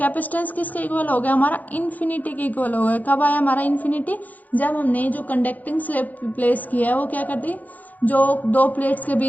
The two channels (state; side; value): late; right; 0.081 ms